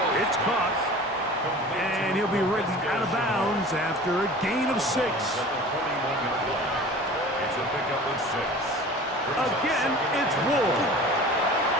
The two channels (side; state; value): both; normal; correlation 0.41